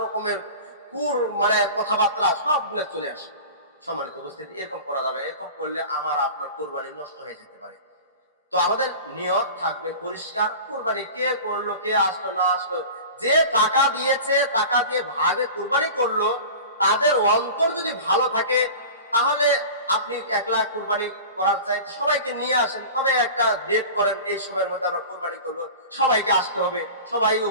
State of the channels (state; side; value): inverted; both; correlation -0.36